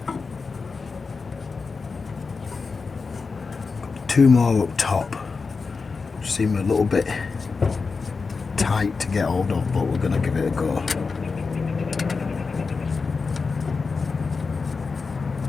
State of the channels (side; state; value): right; quieter; 4.6 dB